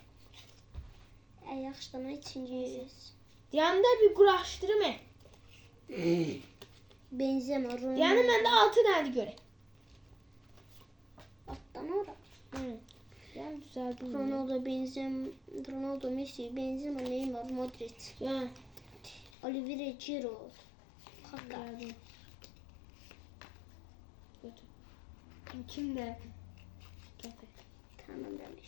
Ay yaxşıdan ikinciyiz. Yanında bir kuraştırma. Benzema, Ronaldo. Yani bende 6 tane göre. Alttan ora. Hı. Yani düzeldim. Ronaldo, Benzema, Ronaldo, Messi, Benzema, Neymar, Modric, Ya. Oliveira, Giroud, Kaka. Geldim. Götür. Kim de? Getir. Tamam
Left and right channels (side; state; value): right; drops out; at 19.3 s